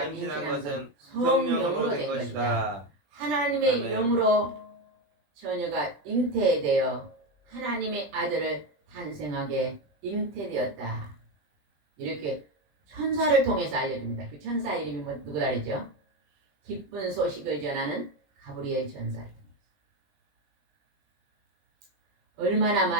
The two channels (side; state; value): left; late; 20 ms